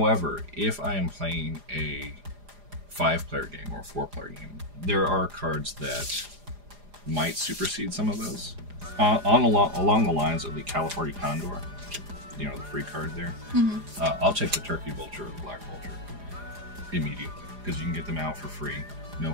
if I am playing a 5-player game or a 4-player game, there are cards that might supersede some of those. Along the lines of the California Condor, you know, the free card there. I'll take the turkey vulture or the black vulture immediately because you can get them out for free, no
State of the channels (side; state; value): left; late; 4.9 ms